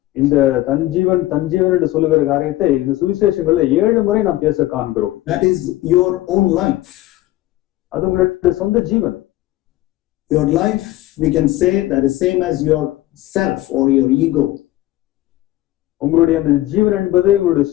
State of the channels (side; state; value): right; quieter; 16.3 dB